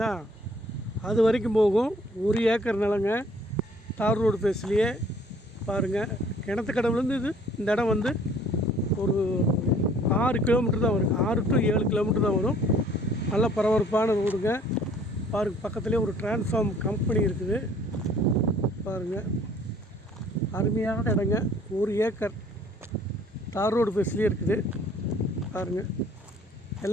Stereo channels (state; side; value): normal; both; correlation 0.57